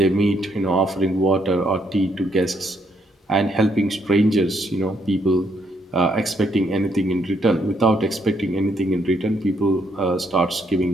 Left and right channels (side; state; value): both; normal; correlation 0.73